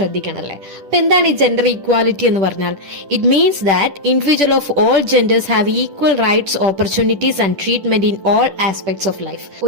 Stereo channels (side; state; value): left; late; 10 ms